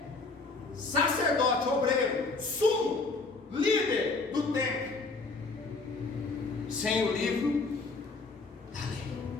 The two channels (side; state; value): right; quieter; 3.8 dB